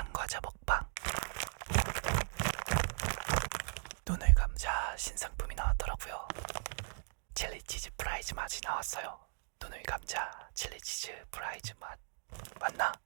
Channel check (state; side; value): silent; left; digital silence